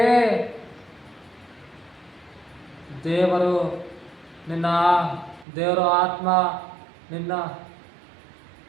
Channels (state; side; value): drops out; left; at 5.5 s